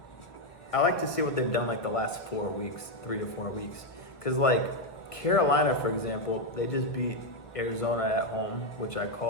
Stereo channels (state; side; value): late; right; 1.3 ms